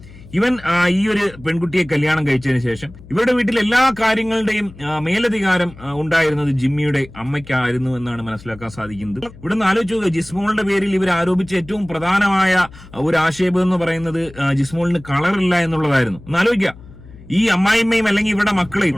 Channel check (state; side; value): noise; left; hum, 20 dB below the sound